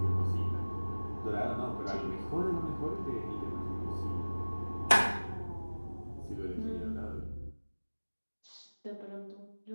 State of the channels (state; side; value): inverted; both; correlation -1.00